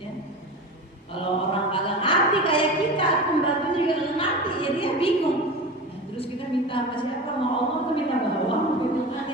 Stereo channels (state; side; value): normal; both; correlation 0.30